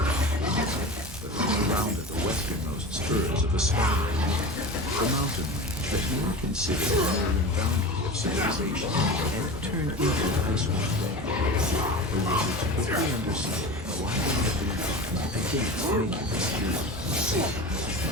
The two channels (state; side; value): normal; both; correlation 0.30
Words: But when they rounded the westernmost spurs of the Sky Range, the mountain range that you were considered the northern boundary of civilization, and turned into Icewind Dale, the wizards quickly understood why they had been against making this journey.